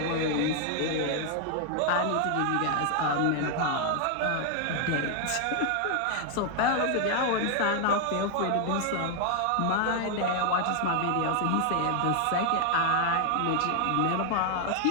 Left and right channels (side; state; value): both; different; correlation 0.00